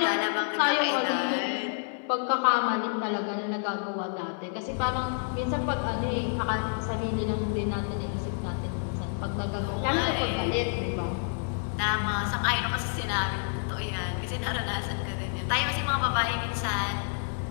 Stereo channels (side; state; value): right; silent; digital silence